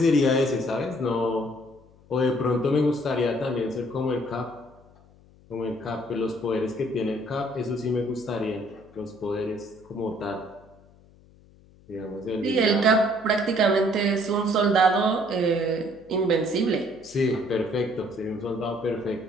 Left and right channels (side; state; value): left; noise; hum, 27 dB below the sound